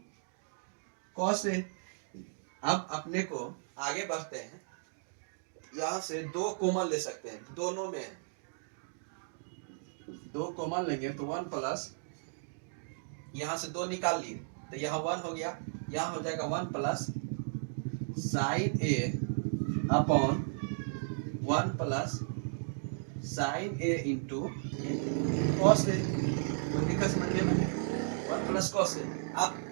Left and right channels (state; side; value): silent; left; digital silence